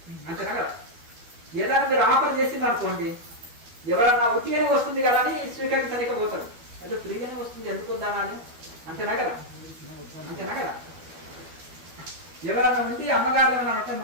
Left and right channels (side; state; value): left; late; 12 ms